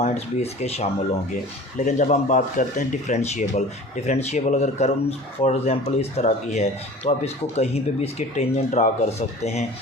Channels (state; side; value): normal; both; correlation 0.41